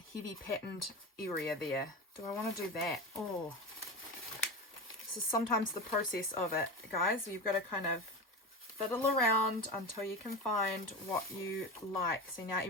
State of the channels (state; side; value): normal; both; correlation 0.24